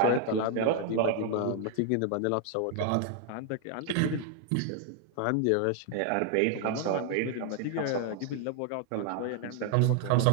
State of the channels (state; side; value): different; both; correlation 0.00